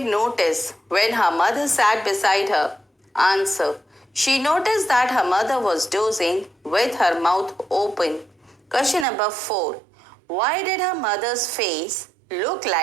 notice when her mother sat beside her? Answer. She noticed that her mother was dozing with her mouth open. Question number 4. Why did her mother's face look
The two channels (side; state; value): left; drops out; at 9.1 s